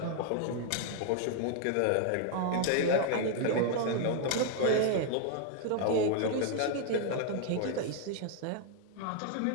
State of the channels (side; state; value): both; different; correlation 0.00